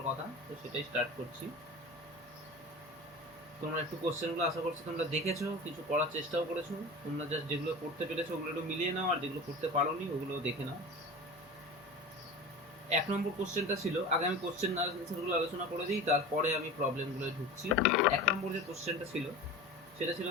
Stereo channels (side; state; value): both; normal; correlation 0.33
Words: কথা, তো সেটাই স্টার্ট করছি। তোমরা একটু কোশ্চেনগুলো আশা করছি তোমরা দেখেছো, কিছু করার চেষ্টাও করেছো। তোমরা জাস্ট যেগুলো করতে পেরেছো ওগুলো একটু মিলিয়ে নাও, আর যেগুলো করতে পারোনি ওগুলোও দেখে নাও। 1 নম্বর কোশ্চেনটা ছিল, আগে আমি কোশ্চেন আনসারগুলো আলোচনা করে দিই, তারপরে আমি প্রবলেমগুলো ঢুকছি। 1 নম্বর যে কোশ্চেনটা ছিল সেটা ছিল,